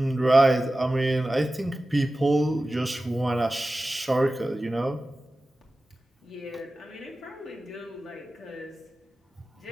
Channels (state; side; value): normal; both; correlation 0.95